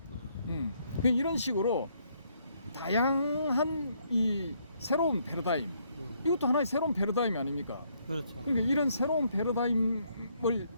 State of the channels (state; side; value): inverted; both; correlation -0.71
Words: 이런 식으로 다양한 이 새로운 패러다임, 이것도 하나의 새로운 패러다임이 아닙니까? 그렇죠. 그러니까 이런 새로운 패러다임을